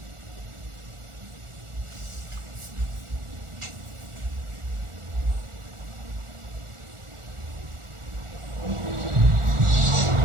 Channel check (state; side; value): late; left; 1.4 ms